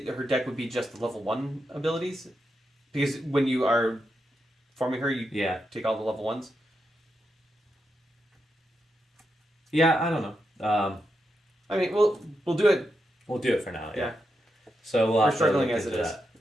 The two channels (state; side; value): normal; both; correlation 0.85